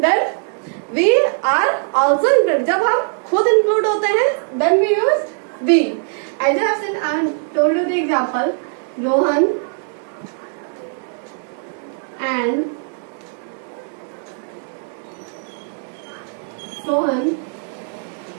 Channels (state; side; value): silent; left; 57 dB below the other